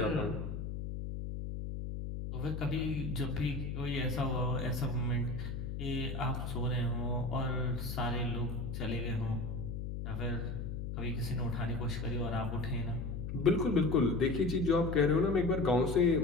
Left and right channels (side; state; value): left; noise; hum, 5 dB below the sound